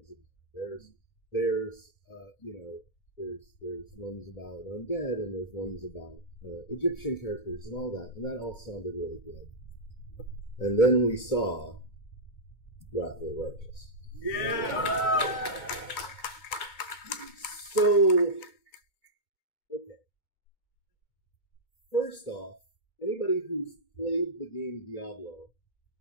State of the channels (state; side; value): late; right; 2.2 ms